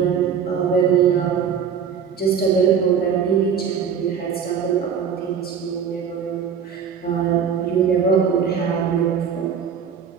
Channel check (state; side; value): quieter; left; 7.1 dB